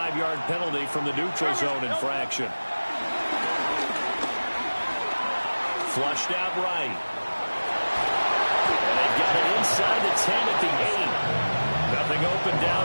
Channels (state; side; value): inverted; both; correlation -1.00